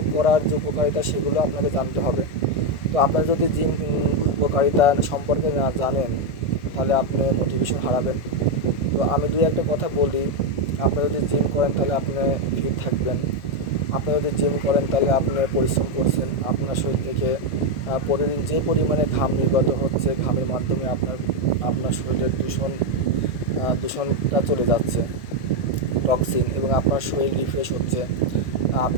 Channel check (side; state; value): right; late; 1.7 ms